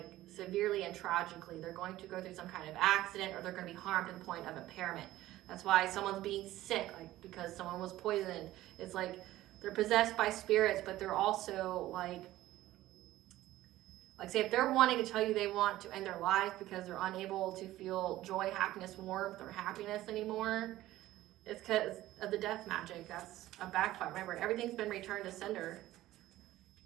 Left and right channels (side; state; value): left; quieter; 15.5 dB